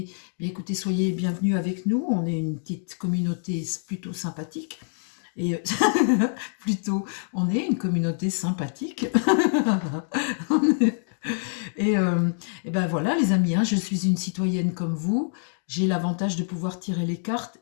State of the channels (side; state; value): right; silent; digital silence